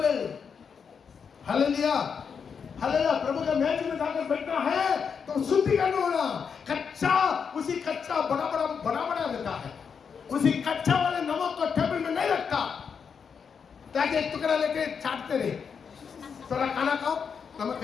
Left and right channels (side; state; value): right; quieter; 6.4 dB